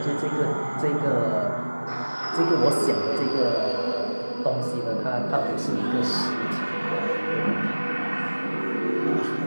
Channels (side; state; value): both; inverted; correlation -1.00